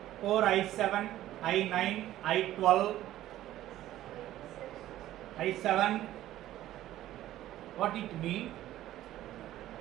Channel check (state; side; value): quieter; left; 13.9 dB